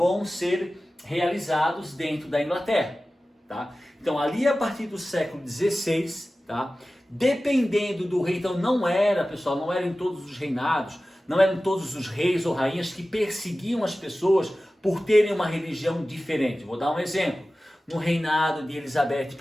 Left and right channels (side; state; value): both; normal; correlation 0.96